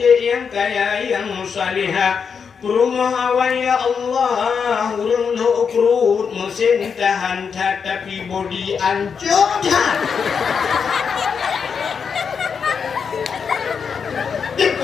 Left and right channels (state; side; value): quieter; right; 6.3 dB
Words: yang kaya, yang salihah. Rumah awan ya Allah, urung lo ukrut mesin tahan tapi body ancur.